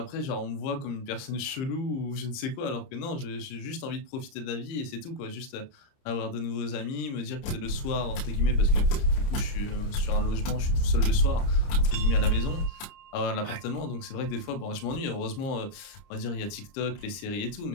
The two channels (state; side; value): late; right; 30 ms